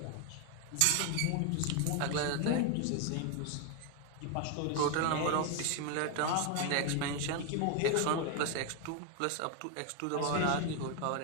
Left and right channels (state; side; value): different; both; correlation 0.01